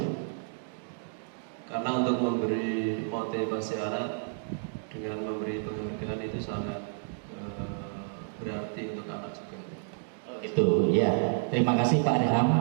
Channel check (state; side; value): silent; left; digital silence